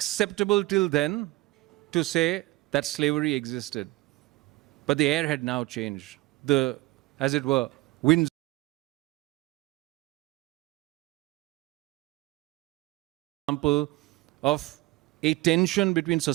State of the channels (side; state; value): left; quieter; 20.3 dB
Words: till then to say that slavery existed, but the air had now changed. As it were, winds. Example of a tension between